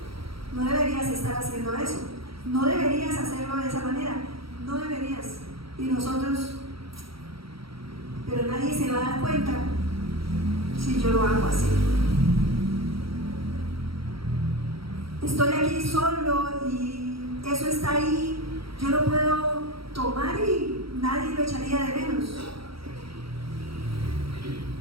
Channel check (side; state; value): left; late; 0.75 ms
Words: no deberías estar haciendo eso, no deberías hacerlo de esa manera, no deberías. Y nosotros, pero nadie se va a dar cuenta si yo lo hago así. Estoy aquí solo y eso está ahí, yo lo puedo tomar y nadie lo echaría de menos.